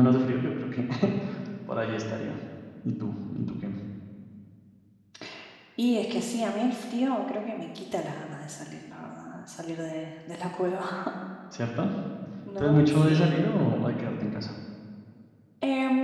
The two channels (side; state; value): both; identical; correlation 1.00